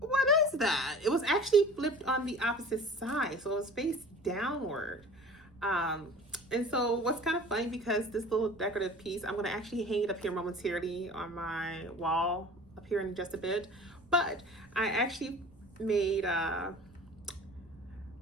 what is that? It was actually flipped on the opposite side. So it was face downward. And so what's kind of funny, because this little decorative piece, I'm going to actually hang it up here momentarily on my wall up here in just a bit. But I actually made I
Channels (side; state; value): right; noise; rumble, 26 dB below the sound